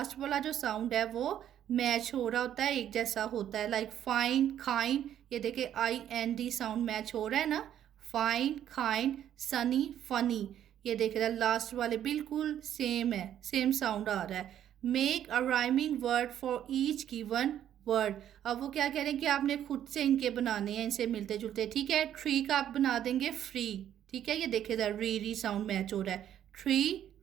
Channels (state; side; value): quieter; left; 10.6 dB